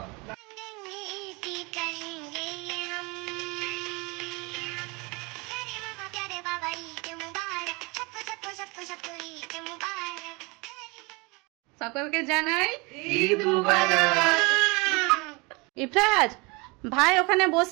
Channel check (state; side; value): quieter; left; 27.3 dB